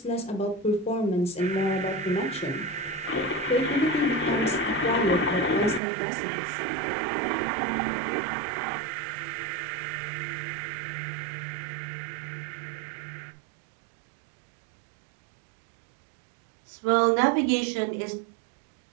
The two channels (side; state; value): left; drops out; at 5.8 s